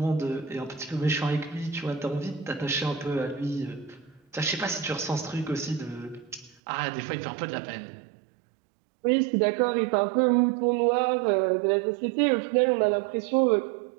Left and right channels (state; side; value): drops out; left; at 6.6 s